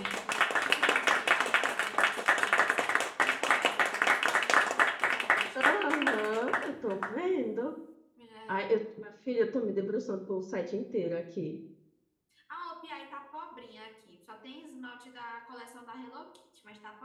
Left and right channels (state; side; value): identical; both; correlation 1.00